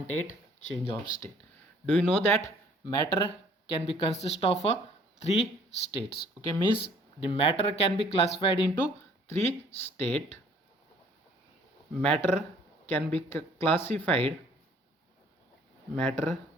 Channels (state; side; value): normal; both; correlation 0.58